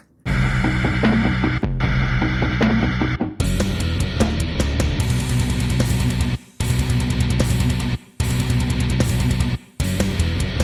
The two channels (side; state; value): both; identical; correlation 1.00